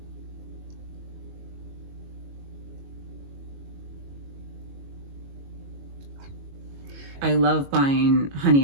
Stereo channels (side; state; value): left; late; 22 ms